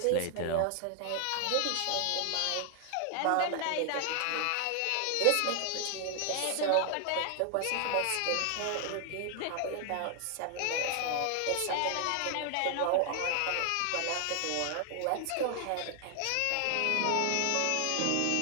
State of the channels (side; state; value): both; different; correlation 0.00